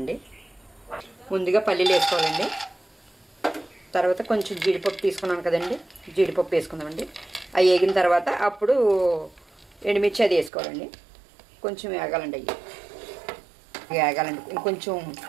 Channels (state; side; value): drops out; left; at 10.5 s